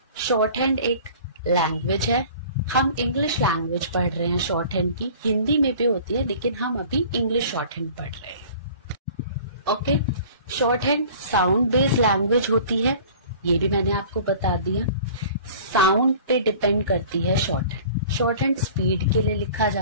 शॉर्ट हैंड एक लैंग्वेज है। हम इंग्लिश लैंग्वेज पढ़ रहे हैं शॉर्ट हैंड की, हिंदी में भी होती है लेकिन हम अभी इंग्लिश शॉर्ट हैंड पढ़ रहे हैं। Okay, short hand sound based language होती है, ये भी मैंने आपको बता दिया। साउंड पे डिपेंड करती है short hand. Short hand speed के लिए लिखा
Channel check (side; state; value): both; inverted; correlation -0.46